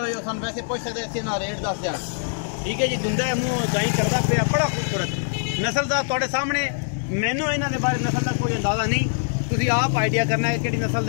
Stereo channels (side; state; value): right; silent; digital silence